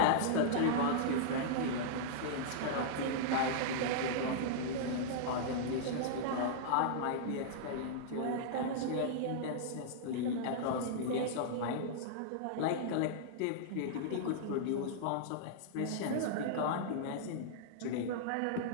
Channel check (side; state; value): both; different; correlation -0.02